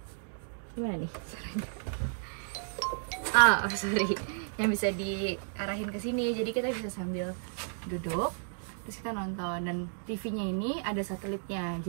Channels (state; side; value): silent; left; digital silence